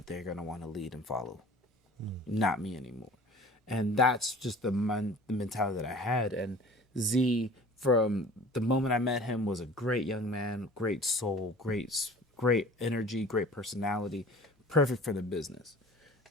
they're going to want to lead and follow, not me anymore. And that's just the mentality that I had. And Z, from the moment I met him, was a great young man, great soul, great energy, great personality, perfect for the business.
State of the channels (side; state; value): both; normal; correlation 0.45